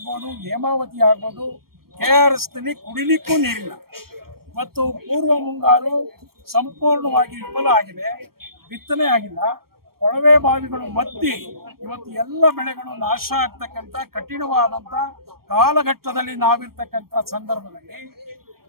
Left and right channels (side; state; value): left; late; 0.94 ms